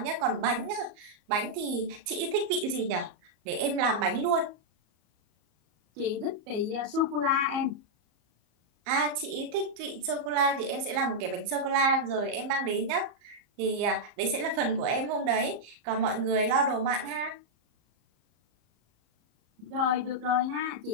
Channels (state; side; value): late; left; 34 ms